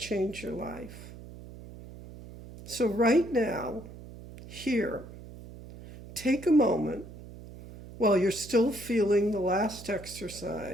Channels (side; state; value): right; noise; hum, 15 dB below the sound